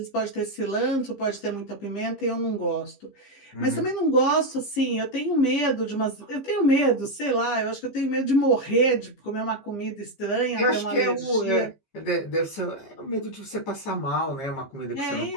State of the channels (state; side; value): late; right; 15 ms